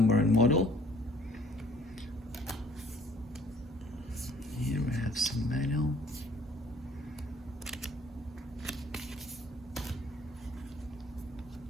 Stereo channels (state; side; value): normal; both; correlation 0.57